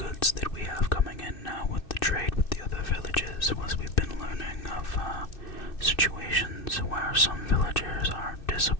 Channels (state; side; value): late; right; 2.6 ms